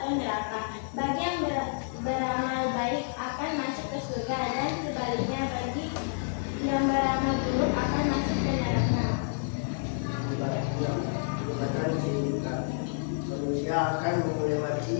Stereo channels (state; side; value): silent; right; 58 dB below the other